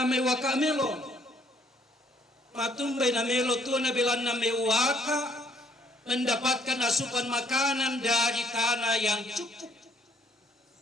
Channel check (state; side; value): normal; both; correlation 0.65